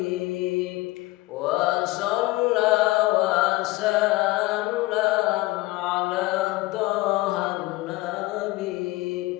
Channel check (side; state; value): right; quieter; 20.1 dB